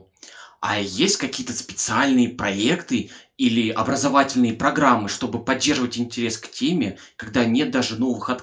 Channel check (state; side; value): identical; both; correlation 1.00